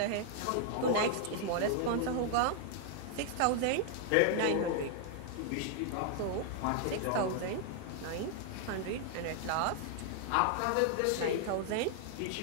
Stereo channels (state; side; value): different; both; correlation 0.00